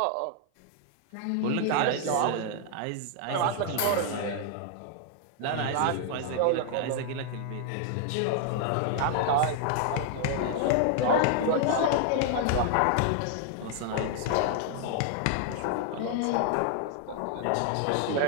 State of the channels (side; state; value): both; different; correlation 0.00